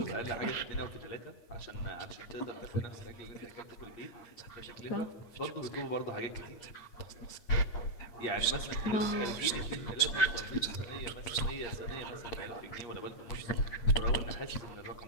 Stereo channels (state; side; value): late; right; 8.6 ms